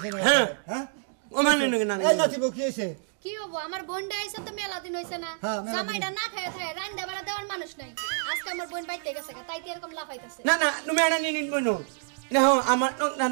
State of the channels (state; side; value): silent; left; digital silence